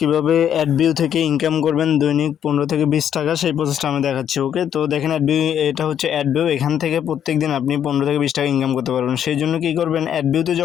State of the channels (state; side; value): quieter; right; 9.4 dB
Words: অ্যাডভিউ থেকে ইনকাম করবেন দৈনিক 15 থেকে 20 টাকা, সেই প্রসেসটা আমি দেখাচ্ছি। ওকে, তো দেখেন অ্যাডভিউ, এটা হচ্ছে অ্যাডভিউ। এখান থেকে প্রত্যেক দিন আপনি 15 থেকে 20 টাকা ইনকাম করতে পারবেন। সেই জন্য কী করবেন, অ্যাডভিউতে